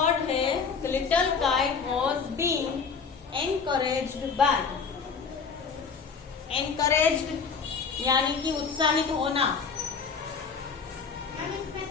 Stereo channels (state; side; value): quieter; right; 5.6 dB